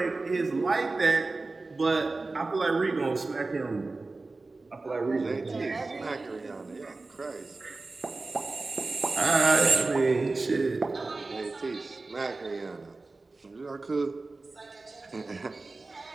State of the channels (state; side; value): quieter; left; 3.5 dB